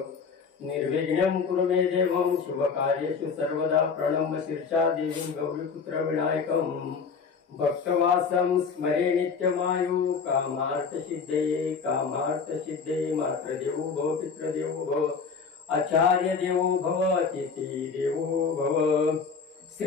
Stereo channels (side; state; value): right; quieter; 5.5 dB